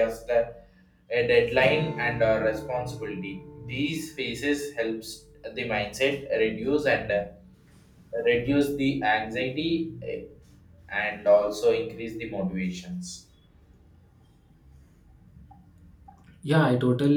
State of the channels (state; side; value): identical; both; correlation 1.00